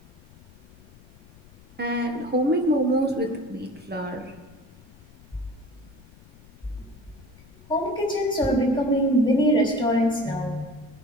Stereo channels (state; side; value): noise; left; rumble, 24 dB below the sound